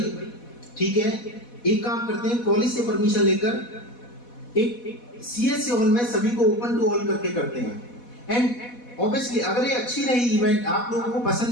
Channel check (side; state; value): right; late; 4.1 ms